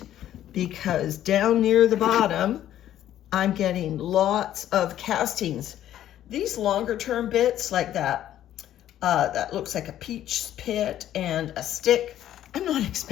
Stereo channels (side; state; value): right; quieter; 12.0 dB